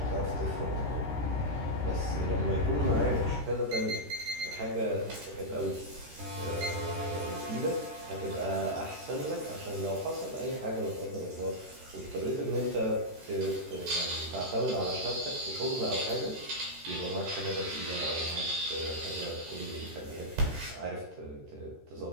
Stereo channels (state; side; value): late; left; 13 ms